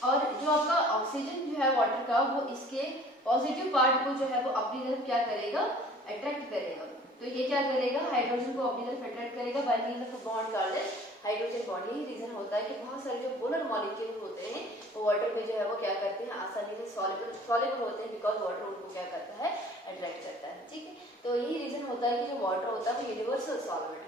और जो आपका ऑक्सीजन जो है वाटर का, वो इसके पॉजिटिव पार्ट को जो है वो अपनी तरफ क्या करेगा, अट्रैक्ट करेगा। तो ये क्या करेगा, हाइड्रोजन को अपनी तरफ अट्रैक्ट करेगा bye means of bond carbon hydrogen bond. यही रीजन होता है कि बहुत सारे जो पोलर मॉलिक्यूल होते हैं वो वाटर में जो है वो क्या करते हैं, आसानी से सॉल्युबल होते हैं, बिकॉज वाटर उनको क्या करता है, अट्रैक्ट करता है, ठीक है। तो यही रीजन होता है कि जो वाटर होता है वो यूनिवर्सल सॉल्वेंट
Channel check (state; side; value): normal; both; correlation 0.50